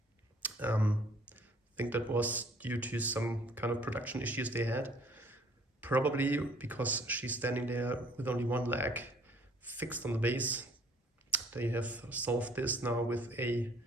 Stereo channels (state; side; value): normal; both; correlation 0.57